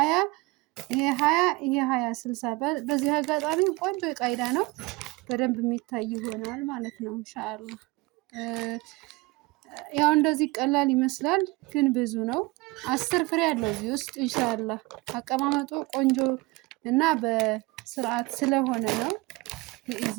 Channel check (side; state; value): left; quieter; 23.4 dB